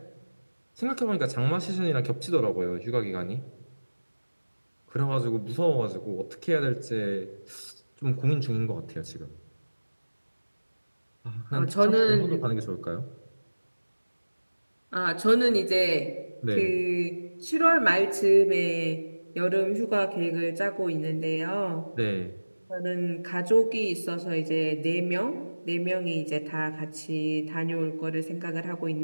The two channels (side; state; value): both; inverted; correlation -1.00